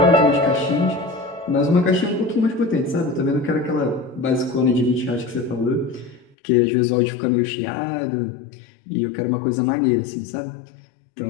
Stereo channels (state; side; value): drops out; right; at 6.4 s